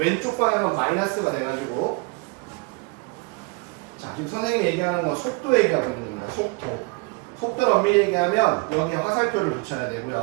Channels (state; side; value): quieter; left; 29.1 dB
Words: 방향은 마이너스가 돼가지고, 자, 지금 선생님이 얘기하는 건 속도 얘기하고 있는 거야. 속도를 엄밀히 얘기하면 여기에 화살표를 붙여야